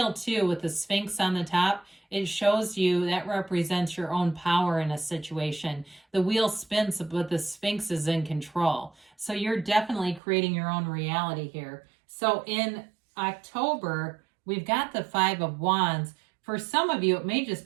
too, with the Sphinx on the top, it shows you that represents your own power in a situation. The wheel spins, but the Sphinx is in control. So you're definitely creating your own reality here. So in October, we've got the Five of Wands. For some of you, it may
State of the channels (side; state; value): left; drops out; at 10.2 s